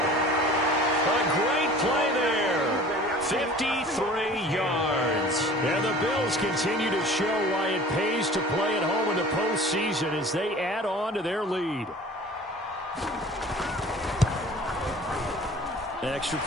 A great play there. 53 yards. And the Bills continue to show why it pays to play at home in the postseason as they add on to their lead. Extra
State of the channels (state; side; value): normal; both; correlation 0.44